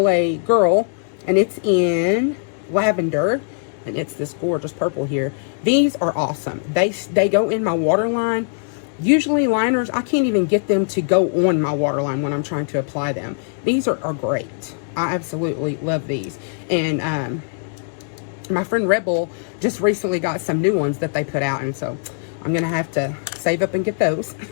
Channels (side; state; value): right; silent; digital silence